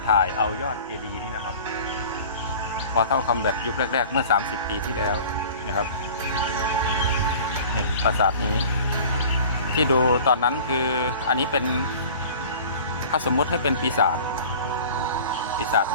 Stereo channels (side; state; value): both; inverted; correlation -0.43